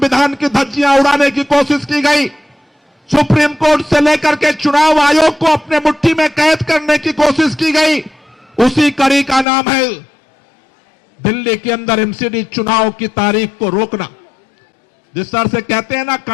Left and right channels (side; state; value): right; drops out; at 9.5 s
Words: की धज्जियां उड़ाने की कोशिश की गई, सुप्रीम कोर्ट से लेकर के चुनाव आयोग को अपने मुट्ठी में कैद करने की कोशिश की गई, उसी कड़ी का नाम है दिल्ली के अंदर एमसीडी चुनाव की तारीख को रोकना। जिस तरह से कहते हैं ना,